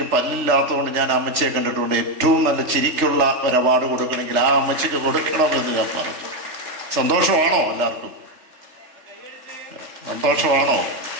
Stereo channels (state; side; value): late; left; 3.6 ms